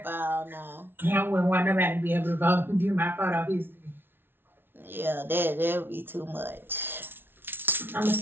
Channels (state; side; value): late; left; 0.11 ms